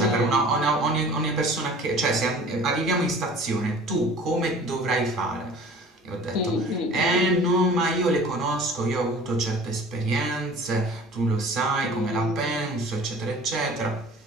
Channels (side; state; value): both; normal; correlation 0.45